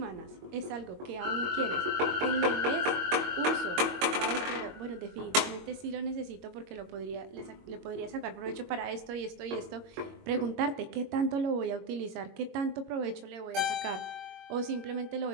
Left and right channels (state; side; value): late; left; 22 ms